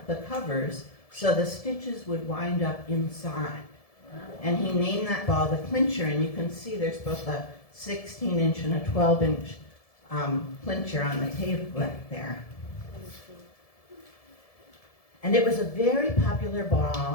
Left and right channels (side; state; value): right; late; 1.7 ms